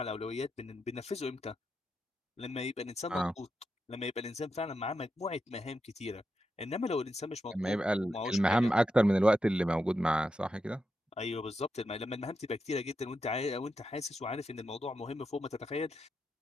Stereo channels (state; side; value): normal; both; correlation 0.86